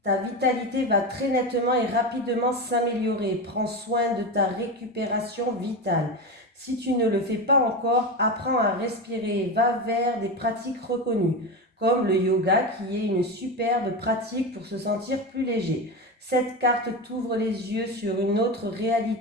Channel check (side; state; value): both; normal; correlation 0.20